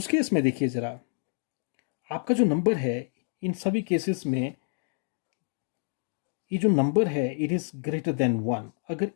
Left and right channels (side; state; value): right; silent; digital silence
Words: केस में देखिए जरा, आपका जो नंबर है इन सभी केसेस में ये जो नंबर है इट इज ग्रेटर देन 1. अगर